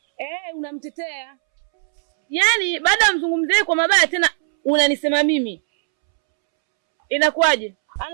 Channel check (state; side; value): silent; left; 66 dB below the other